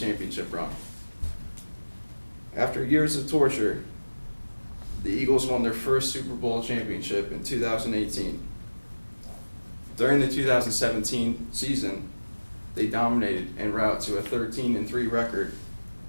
run. After years of torture, the Eagles won their first Super Bowl championship in 2018. During the 2017 season, they dominated en route to a 13-3 record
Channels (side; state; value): both; inverted; correlation -1.00